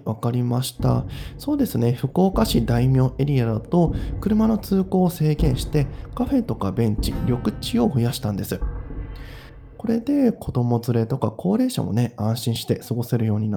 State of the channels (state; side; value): identical; both; correlation 1.00